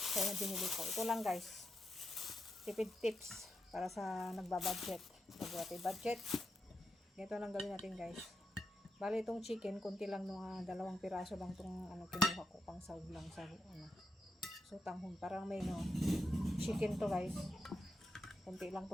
na binili ko. Ito lang guys. Tipid tips para sa nagbabudget. Budget. Ito lang gawin natin guys. Bali itong chicken, konti lang mga 2 piraso lang itong kinuha ko pang sahog lang sa sotanghon. Parang may chicken to guys. Konti lang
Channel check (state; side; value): normal; both; correlation 0.85